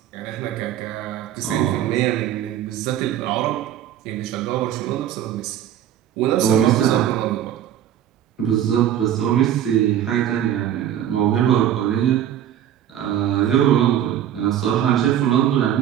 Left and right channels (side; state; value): left; quieter; 10.8 dB